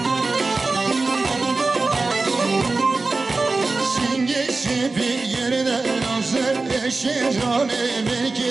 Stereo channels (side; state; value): left; quieter; 3.6 dB